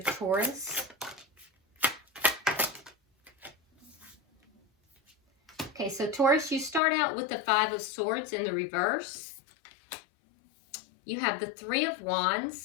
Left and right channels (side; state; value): right; drops out; at 6.8 s